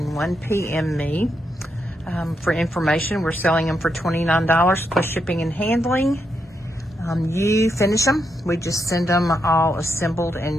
one, PM me. For information, we're selling them for $29 plus shipping and handling. You finish them, we just send them all assembled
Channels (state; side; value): normal; both; correlation 0.81